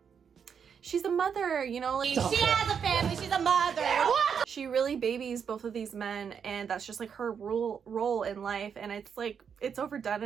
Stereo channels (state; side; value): quieter; left; 7.1 dB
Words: she's a mother, you know, like She has a family, she's a mother. What? She really babies both of these men, and that's just like her role in life, and it's like, it's overdone